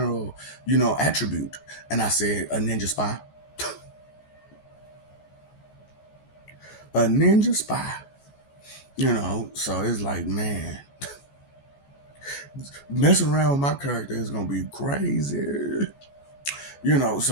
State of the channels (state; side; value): late; right; 14 ms